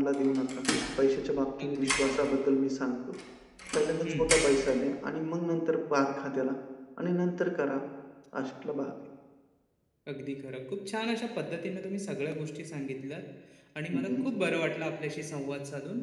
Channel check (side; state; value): both; identical; correlation 1.00